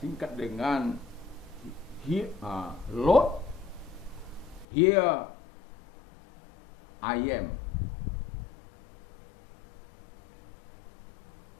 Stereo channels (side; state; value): right; drops out; at 4.7 s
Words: singkat dengan Lord, here I am.